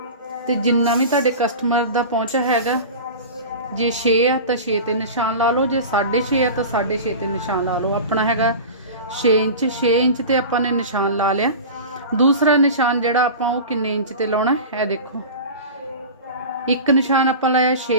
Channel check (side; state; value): both; inverted; correlation -0.32